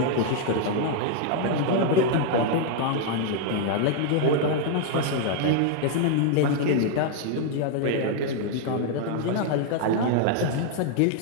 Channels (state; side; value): different; both; correlation 0.00